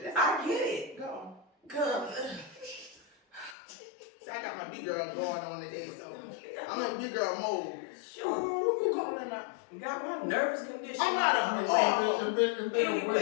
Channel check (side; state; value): right; drops out; at 3.6 s